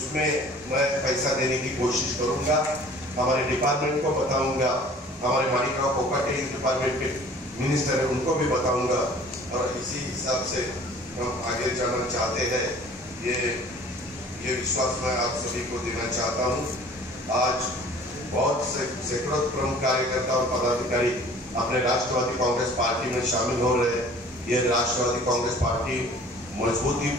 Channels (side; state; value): both; normal; correlation 0.49